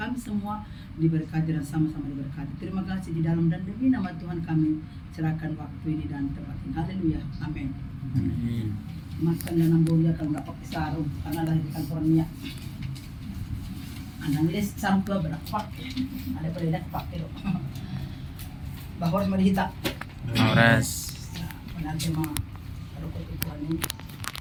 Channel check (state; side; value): identical; both; correlation 1.00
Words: semua diberkati dan sama-sama diberkati. Terima kasih di dalam dan demi nama Tuhan kami serahkan waktu ini dan tempat ini. Haleluya, amin. Makan dan ambil akan dapat sarung karena lahir di California. Anang les sampai berapa? Ada pada pakai loh. Bahwa harus melihat. Oras. Nanti mah kalau kau Tuhan ini